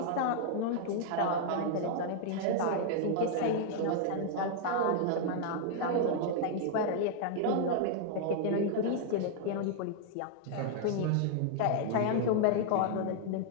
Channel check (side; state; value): both; different; correlation 0.00